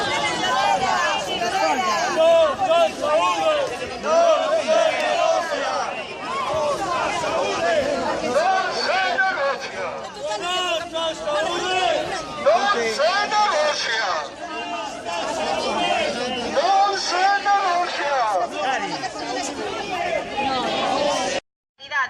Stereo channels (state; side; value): identical; both; correlation 1.00